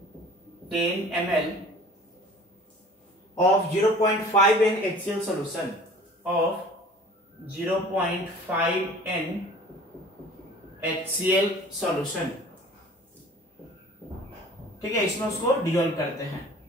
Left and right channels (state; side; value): normal; both; correlation 0.46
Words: of 0.5 n HCl solution of 0.5 n HCl solution। ठीक है, इसमें उसको डिसॉल्व करते हैं।